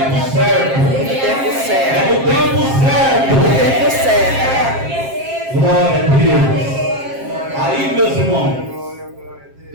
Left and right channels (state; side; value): late; left; 7.5 ms